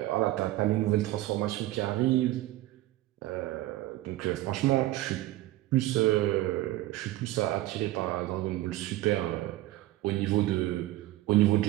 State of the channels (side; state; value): left; quieter; 16.4 dB